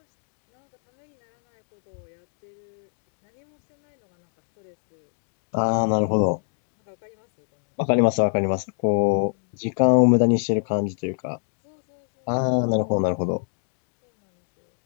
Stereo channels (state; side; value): silent; right; digital silence